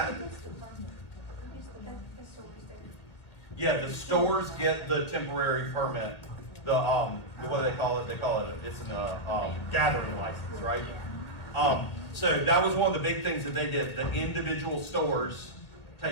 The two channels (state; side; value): late; right; 1.6 ms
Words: The stores do. yeah, the stores get the temporary permit what do they call it? They call it, it's a gathering license, right? So that was one of the big things that they did. The individual stores